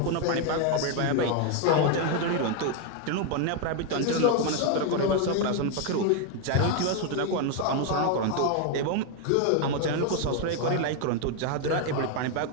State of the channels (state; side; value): different; both; correlation 0.01